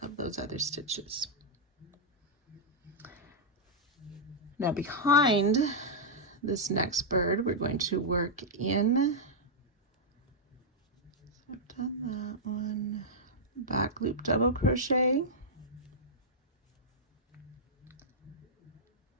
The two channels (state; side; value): normal; both; correlation -0.07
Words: those other stitches. Now behind this next bird, we're going to work in, so I've done that one, back loop double crochet,